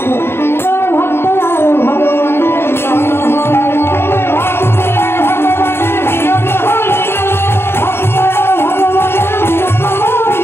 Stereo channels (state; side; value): late; right; 0.11 ms